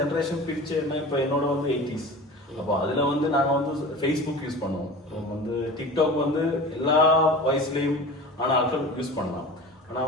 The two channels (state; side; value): normal; both; correlation 0.36